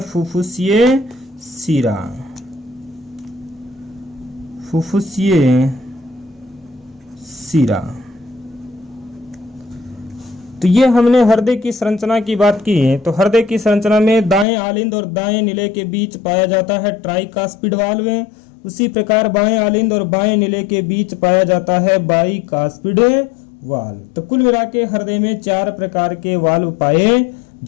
फुफ्फुसीय शिरा। फुफ्फुसीय शिरा। तो ये हमने हृदय की संरचना की बात की। तो हृदय की संरचना में दाएं आलिंद और दाएं निले के बीच पाया जाता है ट्राइकास्पिड वाल्व। उसी प्रकार बाएं आलिंद और बाएं निले के बीच पाया जाता है बाइकास्पिड वाल्व। तो कुल मिला के हृदय में 4 प्रकार के वाल्व पाए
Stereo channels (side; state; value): right; drops out; at 14.5 s